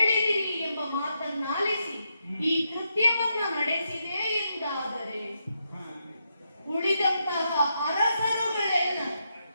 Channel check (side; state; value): both; inverted; correlation -0.81